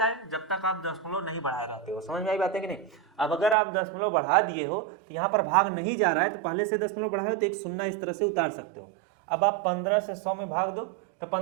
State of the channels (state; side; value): drops out; left; at 3.6 s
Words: है, जब तक आप दशमलव नहीं बढ़ा रहते हो। समझ में आई बात है कि नहीं। अब अगर आप दशमलव बढ़ा दिए हो तो यहाँ पर भाग नहीं जा रहा है, तो पहले से दशमलव बढ़ाओ तो एक शून्य इस तरह से उतार सकते हो। अब आप 15 से 100 में भाग दो तो